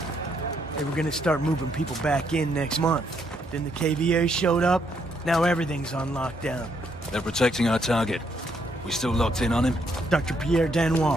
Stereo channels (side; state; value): both; normal; correlation 0.73